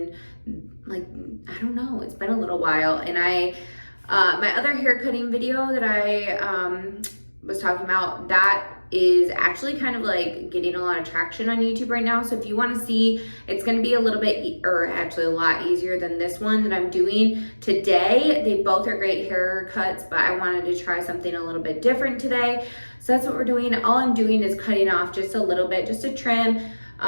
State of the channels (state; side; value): inverted; both; correlation -1.00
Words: I don't know, it's been a little while. And my other hair cutting video that I was talking about, that is actually kind of like getting a lot of traction on YouTube right now. So if you want to see, it's going to be a little bit, or actually a lot easier than this one that I'm doing today. They both are great haircuts, but I wanted to try something a little bit different today. So that's what we're doing. All I'm doing is cutting off just a little bit, just a trim,